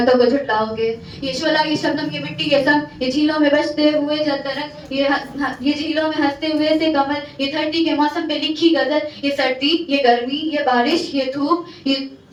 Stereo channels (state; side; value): identical; both; correlation 1.00